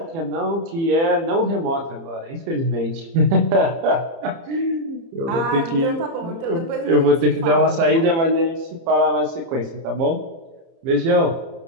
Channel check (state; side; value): late; left; 30 ms